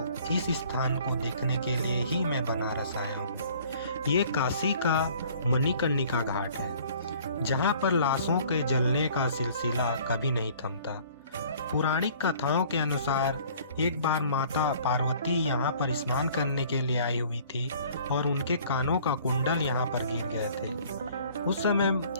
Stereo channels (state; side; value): inverted; both; correlation -0.53